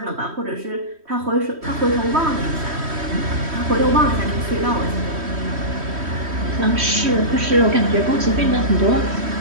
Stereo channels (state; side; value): late; left; 3.1 ms